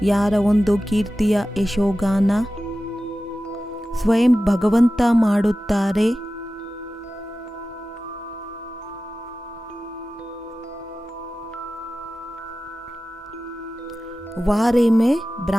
ಯಾರ ಒಂದು ಕೀರ್ತಿಯ ಯಶೋಗಾನ ಸ್ವಯಂ ಭಗವಂತ ಮಾಡುತ್ತಾರೆ. ವಾರೆ ಮೇ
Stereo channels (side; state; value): both; normal; correlation 0.95